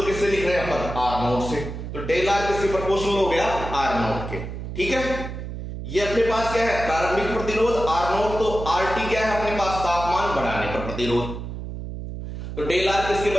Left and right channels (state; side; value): noise; right; hum, 8 dB below the sound